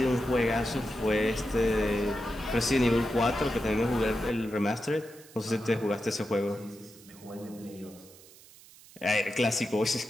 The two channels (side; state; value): right; noise; hiss, 22 dB below the sound